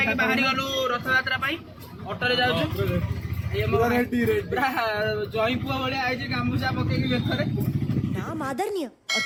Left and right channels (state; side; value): identical; both; correlation 1.00